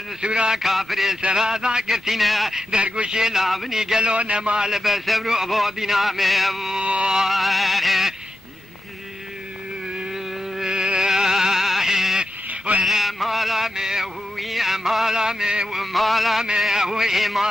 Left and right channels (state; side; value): normal; both; correlation 0.90